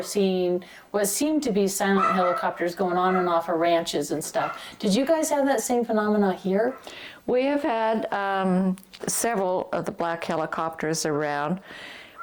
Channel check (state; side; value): identical; both; correlation 1.00